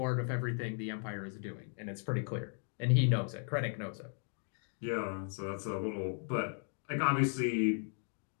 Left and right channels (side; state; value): right; silent; 54 dB below the other